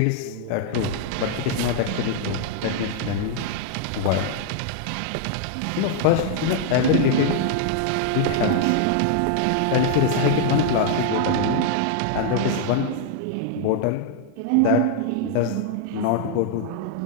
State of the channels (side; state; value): both; different; correlation 0.00